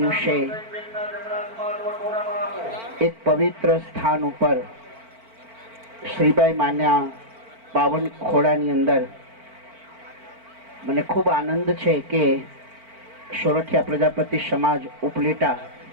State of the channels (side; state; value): left; late; 4.5 ms